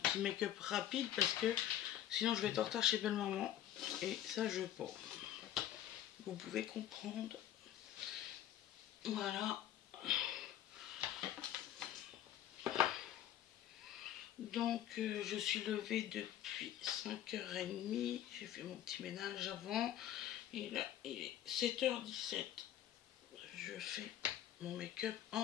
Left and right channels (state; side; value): quieter; right; 11.7 dB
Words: make-up rapide parce que sinon je vais être en retard chez belle maman et ça je veux pas. Vous pouvez comprendre. Voilà. Donc je suis levée depuis 5h30. J'ai fait mon petit ménage avant. Et là il est 7h17. Je fais mon make-up